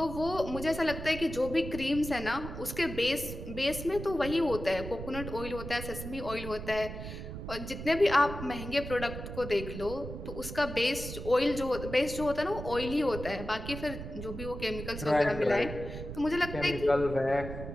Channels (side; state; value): right; noise; rumble, 9 dB below the sound